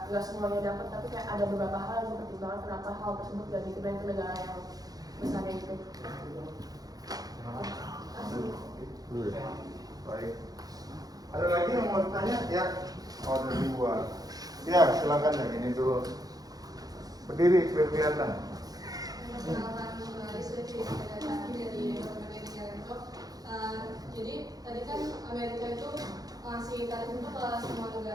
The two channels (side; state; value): left; late; 0.18 ms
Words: nggak semuanya dapat, tapi kayak ada beberapa hal yang dipertimbangkan kenapa hal tersebut gak dikenain ke negara yang besarnya itu. Baik. Ada lagi yang mau ditanya? Ya. Oh, ada dua. Ya, silakan yang ini dulu. Berdiri, biar kelihatan. Jadi tadi kan Amerika itu ngasih tarif itu ke semua